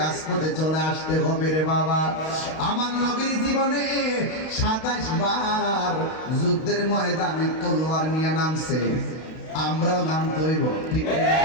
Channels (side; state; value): right; late; 32 ms